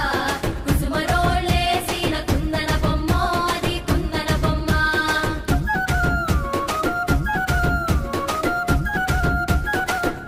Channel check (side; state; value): both; identical; correlation 1.00